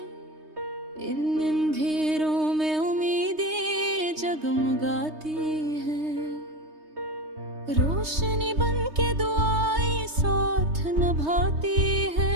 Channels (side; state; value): left; late; 3.2 ms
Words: इन अंधेरों में उम्मीदें जगमगाती हैं। रोशनी बन के दुआएं साथ निभाती है।